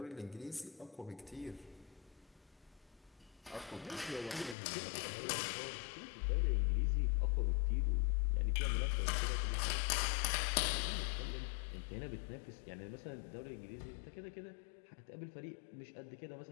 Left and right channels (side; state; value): right; drops out; at 4.5 s